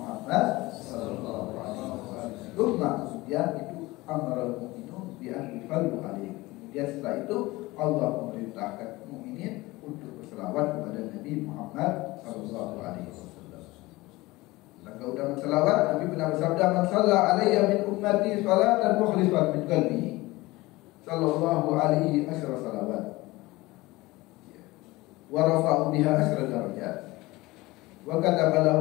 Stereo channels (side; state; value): right; quieter; 20.5 dB